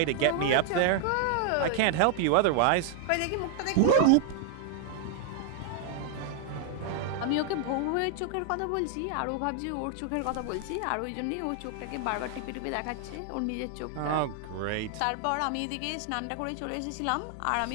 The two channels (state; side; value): different; both; correlation 0.00